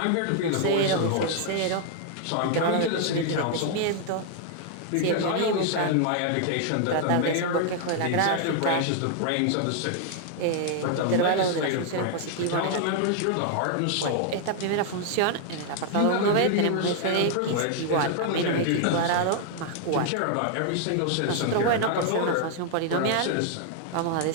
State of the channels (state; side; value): different; both; correlation 0.00